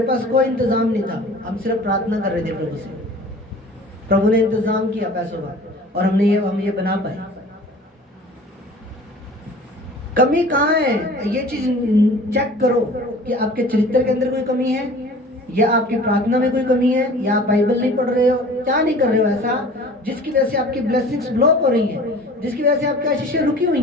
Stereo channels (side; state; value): both; normal; correlation 0.45